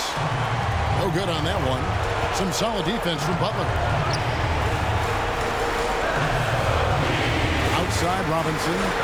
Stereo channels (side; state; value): both; identical; correlation 1.00